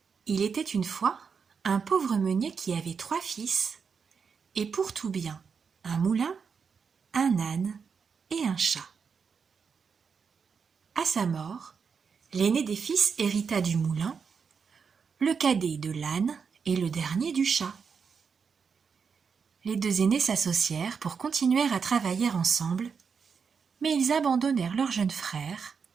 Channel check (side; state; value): left; quieter; 6.0 dB